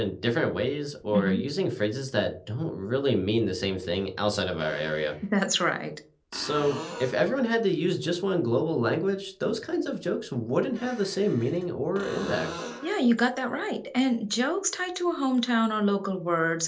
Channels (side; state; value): both; identical; correlation 1.00